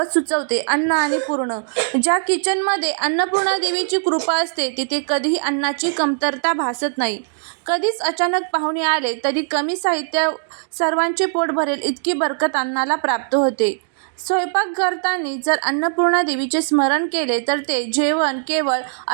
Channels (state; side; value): silent; left; digital silence